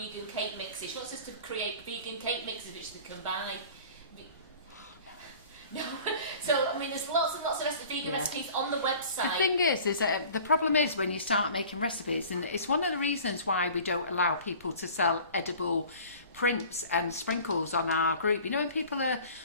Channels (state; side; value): inverted; both; correlation -0.45